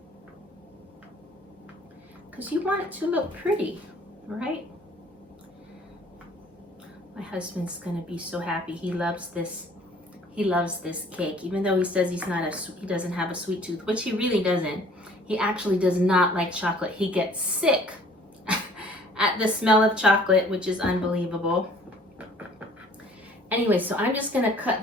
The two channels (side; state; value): both; normal; correlation 0.54